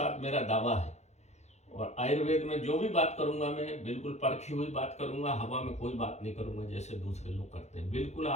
मेरा दावा है। और आयुर्वेद में जो भी बात करूंगा मैं बिल्कुल परखी हुई बात करूंगा, हवा में कोई बात नहीं करूंगा जैसे दूसरे लोग करते हैं। बिल्कुल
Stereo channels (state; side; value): late; right; 0.33 ms